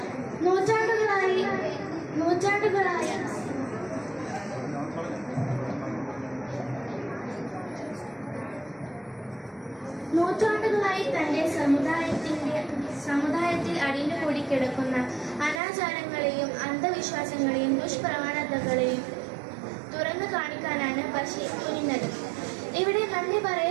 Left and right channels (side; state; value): left; drops out; at 15.6 s